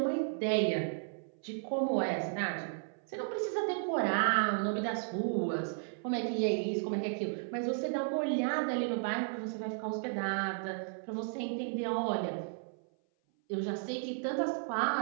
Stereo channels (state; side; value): silent; left; 55 dB below the other